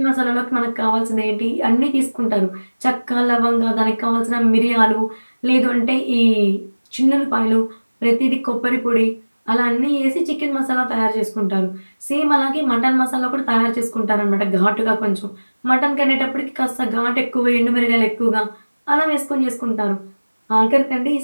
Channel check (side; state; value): both; inverted; correlation -1.00